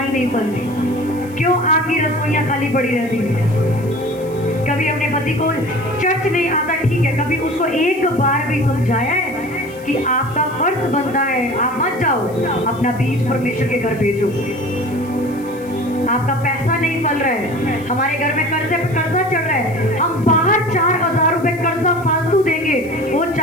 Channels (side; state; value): left; noise; hiss, 24 dB below the sound